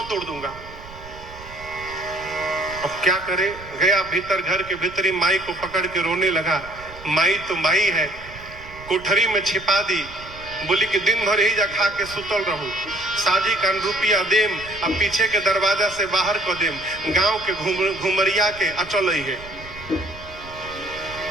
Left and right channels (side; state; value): right; noise; rumble, 17 dB below the sound